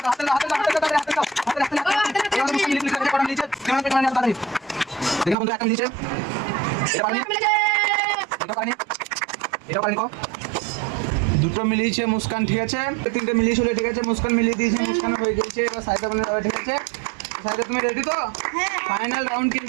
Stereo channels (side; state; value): left; drops out; at 5.4 s